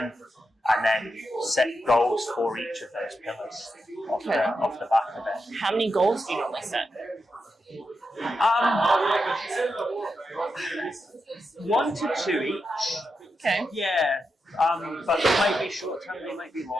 And then set goals for each of those pillars off the back of it. How many goals do you normally set? 1 to 2 each. Okay. Yeah. But they might be short term, they might be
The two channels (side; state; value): both; normal; correlation 0.87